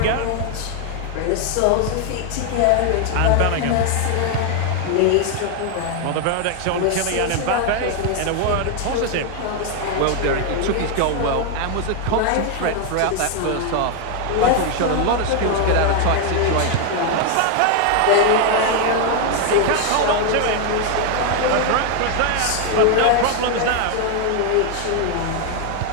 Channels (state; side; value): different; both; correlation 0.01